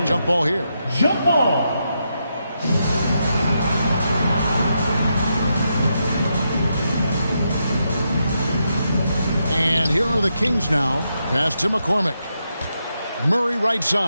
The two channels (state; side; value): inverted; both; correlation -0.83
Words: jump ball here. Jump ball. And here are the Kings now. Pass to McCormick. Murray right